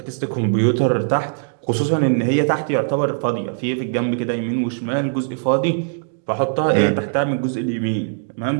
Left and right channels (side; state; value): left; silent; digital silence